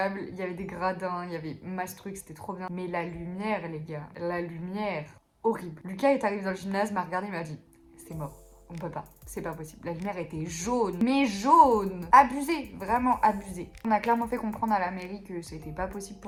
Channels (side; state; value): both; identical; correlation 1.00